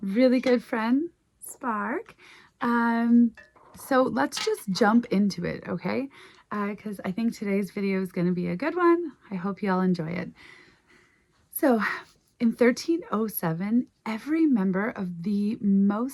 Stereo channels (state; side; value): identical; both; correlation 1.00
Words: really good friend, Spark. So let's just jump into it, okay? Because I think today's video is going to be a good one. I hope you all enjoy it. So in 1307, every member of the